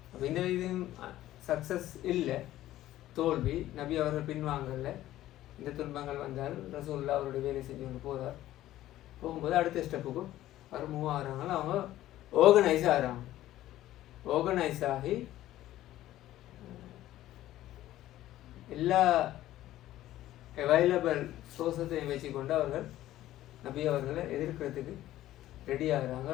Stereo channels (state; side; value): quieter; right; 14.3 dB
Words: அப்போ இந்த இது சக்ஸஸ் இல்லை, தோல்வி. நபி அவர்கள் பின்வாங்கல. இந்த துன்பங்கள் வந்தால் ரசூலுல்லாஹ் அவருடைய வேலை செஞ்சு கொண்டு போகிறார். போகும்போது அடுத்த ஸ்டெப்புக்கும் அவர் மூவ் ஆகிறாங்க. அவங்க ஆர்கனைஸ் ஆகிறாங்க. ஆர்கனைஸ் ஆகி எல்லா அவைலபிள் சோர்ஸத்தையும் வச்சுக்கொண்டு அவர்கள் நபி அவர்களை எதிர்க்கிறதுக்கு ரெடி ஆகிறாங்க.